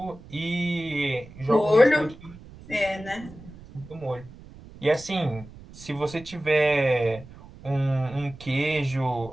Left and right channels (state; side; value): noise; right; rumble, 19 dB below the sound